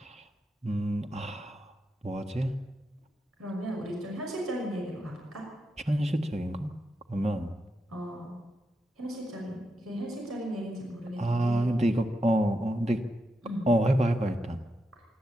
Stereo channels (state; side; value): normal; both; correlation 0.85